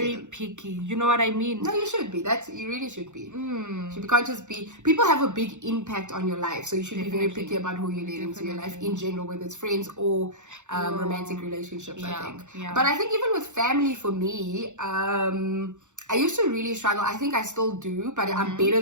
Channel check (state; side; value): late; left; 0.84 ms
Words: picky. You know what I mean? No, you should be. You really should be. You can't just be. People have a big impact on your life, so you should be very picky about who you let into your life in general, whether it's friends or romantic relationships. I think. Yeah. But I think even with family, for me, I used to really struggle. I think I still do, but I'm better